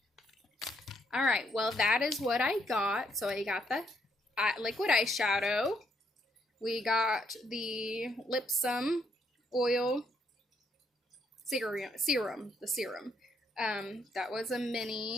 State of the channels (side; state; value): both; normal; correlation 0.73